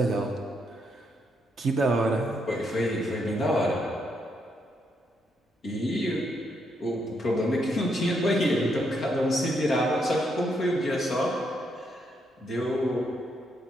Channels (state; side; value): normal; both; correlation 0.77